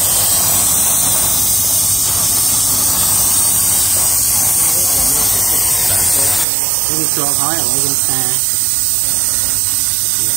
វាជាប់ហើយឥឡូវយើងផ្សារ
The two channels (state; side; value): drops out; left; at 6.5 s